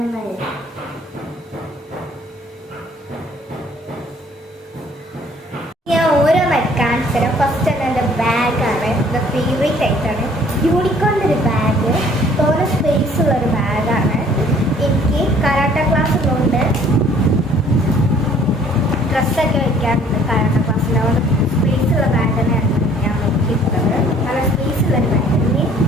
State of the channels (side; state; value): both; normal; correlation 0.57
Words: ഞാൻ ഓരോന്നായി കാണിച്ചു തരാം. ഫസ്റ്റ് തന്നെ എൻ്റെ ബാഗാണ്, എൻ്റെ ഫേവറേറ്റ് ആയിട്ടാണ്. യൂണിക്കോണിൻ്റെ ഒരു ബാഗ്, തോന്നെ സ്പേസ് ഉള്ളൊരു ബാഗാണ്. എനിക്ക് കരാട്ട ക്ലാസ് ഉള്ളതുകൊണ്ട് ഡ്രസ്സൊക്കെ വെക്കാറുണ്ട്. കരാട്ട ക്ലാസ്സിൽ അതുകൊണ്ട് സ്പേസ് ഉള്ള ബാഗ് തന്നെയാണ് ഞാൻ നോക്കിയിട്ടുള്ളത്. നല്ല സ്പേസ് ഉള്ളൊരു ബാഗ്. ഇനി